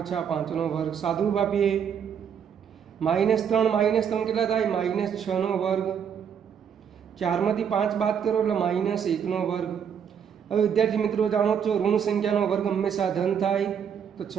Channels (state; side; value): quieter; left; 7.8 dB